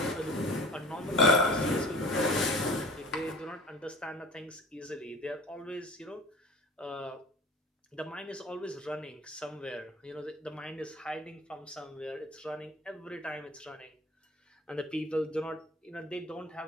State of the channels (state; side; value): normal; both; correlation 0.43